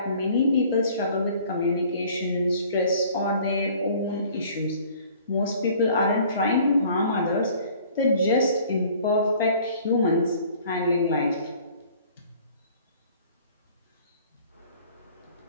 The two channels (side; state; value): both; inverted; correlation -0.53